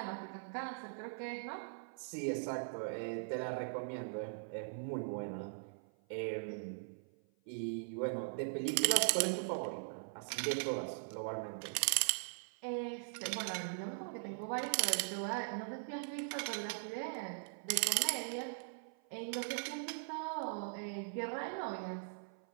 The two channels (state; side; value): silent; left; 51 dB below the other